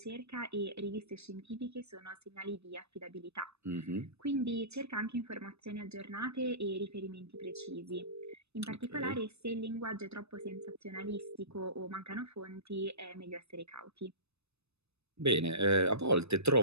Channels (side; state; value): left; late; 0.79 ms